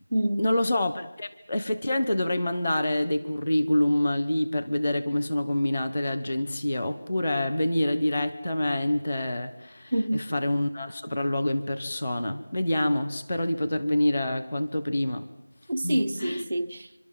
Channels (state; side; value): inverted; both; correlation -0.96